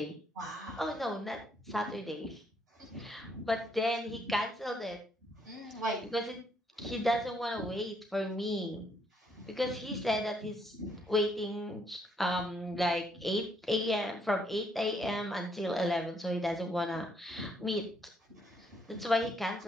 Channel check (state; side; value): normal; both; correlation 0.71